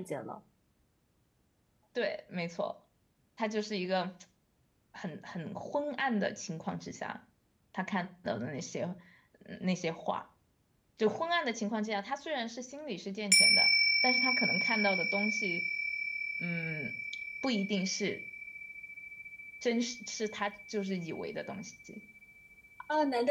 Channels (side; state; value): both; identical; correlation 1.00